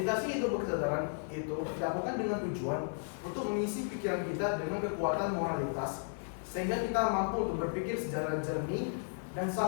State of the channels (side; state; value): right; silent; 55 dB below the other